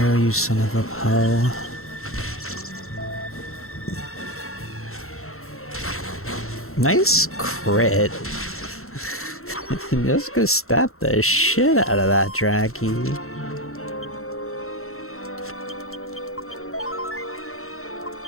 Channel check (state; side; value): late; right; 0.63 ms